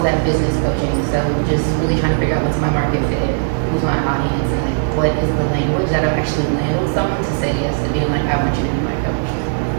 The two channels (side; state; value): left; silent; digital silence